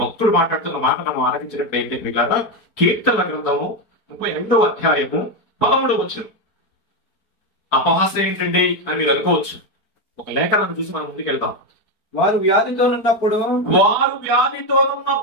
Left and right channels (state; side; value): late; right; 4.4 ms